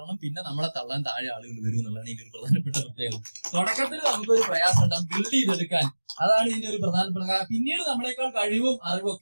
പിന്നെ നമ്മളെ തള്ളാൻ താഴെ ആളുകൾ വരും എന്നുള്ളതാണ് ഇതിന്റെ ഒരു പ്രധാനപ്പെട്ട പ്രത്യേകത. തുടക്കത്തിൽ നമുക്കൊരു പ്രയാസം ഉണ്ടാകും ബിൽഡ് ചെയ്തെടുക്കാൻ. അതാണ് ഇതിന്റെ ഒരു പ്രധാനപ്പെട്ട കാരണം. പിന്നീട് നമ്മളെക്കാൾ കഴിവും അറിവും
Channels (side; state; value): both; inverted; correlation -1.00